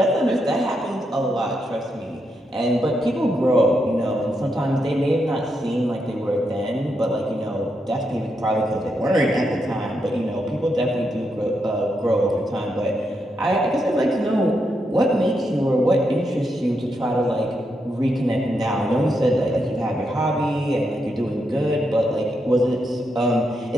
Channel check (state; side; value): normal; both; correlation 0.82